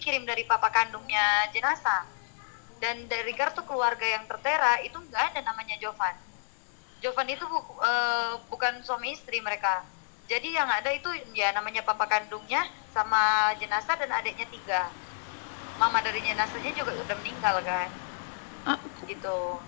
dari papa kandungnya jenazah, dan dari kartu keluarga yang tertera itu nggak ada namanya Jovan. Jovan itu bukan suami istri mereka. Jadi yang ada itu ya namanya papa kandungnya sama jenazah dan adiknya 3. Mama dari jenazahnya juga udah meninggal kan. Gitu.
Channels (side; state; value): right; silent; 58 dB below the other